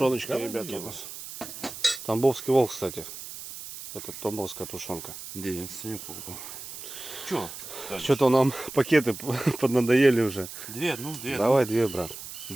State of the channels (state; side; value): noise; right; hiss, 11 dB below the sound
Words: Давай ребята, у делаем. нас. Тамбовский волк, кстати. Это тамбовская тушенка. Да, я Санек покупал. Че? Что-то нам пакеты поднадоели уже. Две, ну две. Давай две, брат.